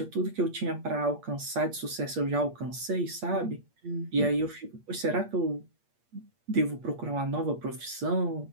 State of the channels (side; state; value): left; late; 8.5 ms